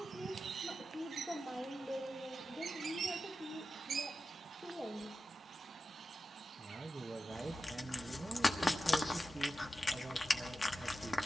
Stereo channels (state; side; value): normal; both; correlation 0.91